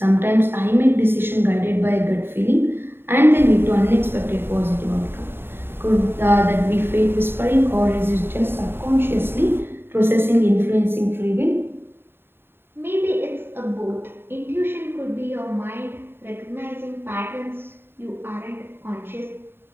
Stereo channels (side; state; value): left; late; 0.11 ms